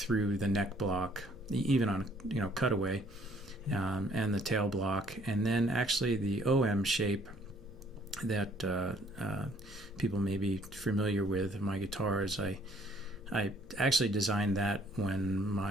the neck block, even on cutaway, and the tail block, and then actually the OM shape that people may be familiar with in my guitars. I actually designed that when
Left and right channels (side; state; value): left; noise; hum, 22 dB below the sound